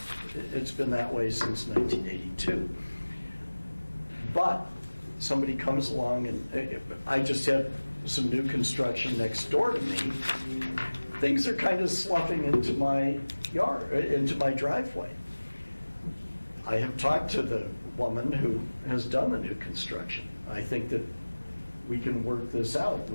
It's been that way since 1982. But somebody comes along and I just had some new construction next door to me. Things are kind of sloughing into my yard, into my driveway. I have talked to the woman who has done the new construction. I think that we can work this out.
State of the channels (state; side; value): inverted; both; correlation -1.00